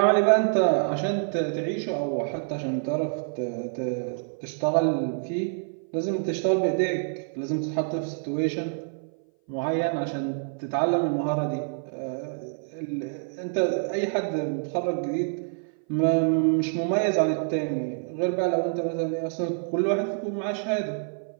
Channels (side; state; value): left; silent; 57 dB below the other